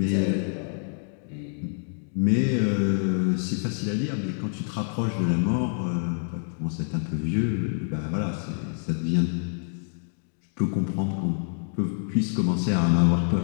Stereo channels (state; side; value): silent; right; 60 dB below the other